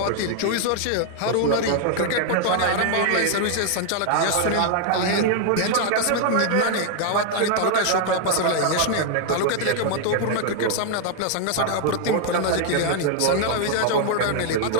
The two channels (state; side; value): different; both; correlation 0.00